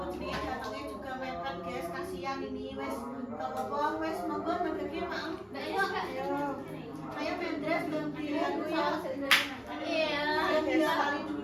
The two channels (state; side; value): identical; both; correlation 1.00